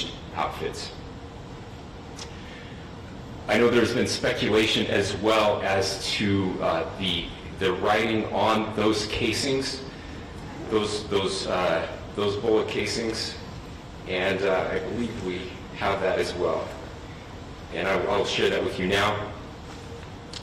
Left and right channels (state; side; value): identical; both; correlation 1.00